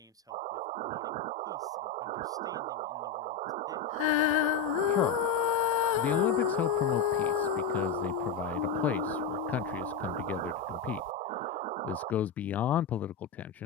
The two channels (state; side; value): quieter; right; 5.0 dB